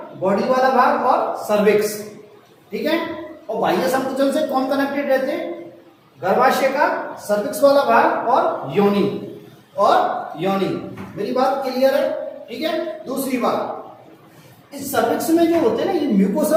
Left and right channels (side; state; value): both; identical; correlation 1.00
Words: बॉडी वाला भाग और सर्विक्स। ठीक है, और बाह्य संकुचन से कौन कनेक्टेड रहते हैं, गर्भाशय का सर्विक्स वाला भाग और योनि, और योनि। मेरी बात क्लियर है। ठीक है, दूसरी बात, इस सर्विक्स में जो होते हैं ना, ये